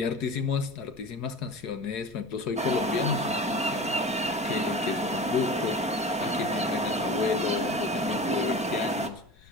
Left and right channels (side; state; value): left; noise; rumble, 26 dB below the sound